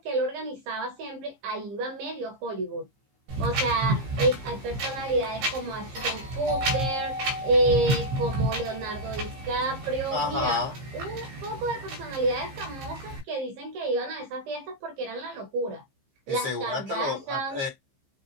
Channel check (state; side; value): late; left; 15 ms